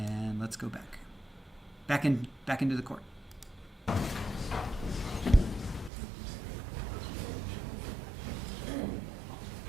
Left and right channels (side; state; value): left; drops out; at 5.9 s